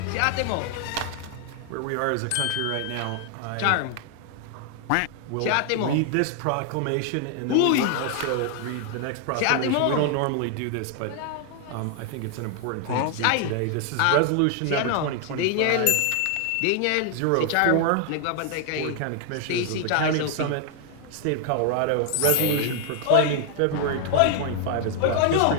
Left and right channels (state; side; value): different; both; correlation 0.00